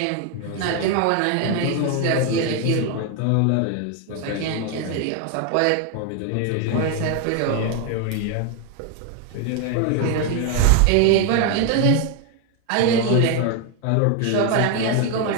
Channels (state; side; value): different; both; correlation 0.01